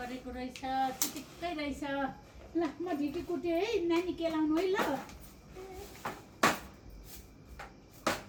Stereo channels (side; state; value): both; identical; correlation 1.00